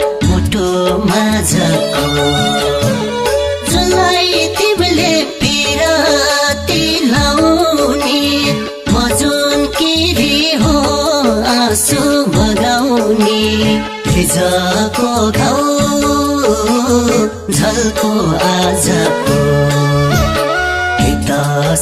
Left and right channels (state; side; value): identical; both; correlation 1.00